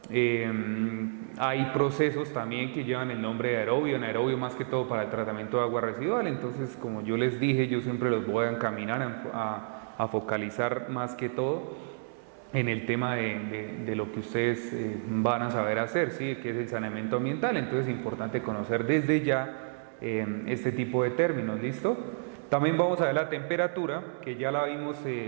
Hay procesos también que llevan el nombre de aerobio, anaerobio más que todo para el tratamiento de agua residual. Entonces, como yo les dije, yo siempre los voy a encaminar a focalizar más que todo en el tema de lo que ustedes van a saber hacer, ¿sí? Que es el saneamiento ambiental. Entonces es importante conocer desde ya este tipo de términos, ¿listo? También vamos a ver la temperatura, que ya la vimos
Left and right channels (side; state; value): left; silent; digital silence